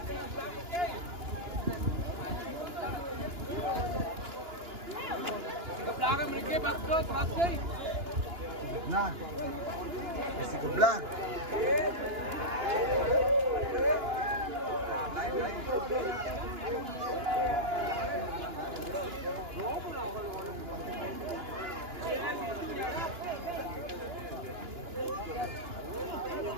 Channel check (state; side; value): late; left; 2.9 ms